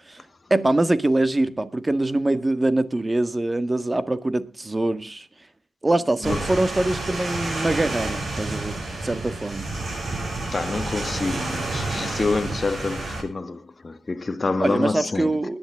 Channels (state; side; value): normal; both; correlation 0.95